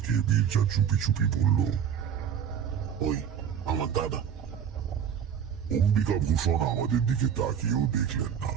মির্জা চুপি চুপি বলল, ওই আমার দাদা। অম্বিকা ভূষণ আমাদের দিকে তাকিয়েও দেখলেন না।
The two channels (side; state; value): left; quieter; 8.2 dB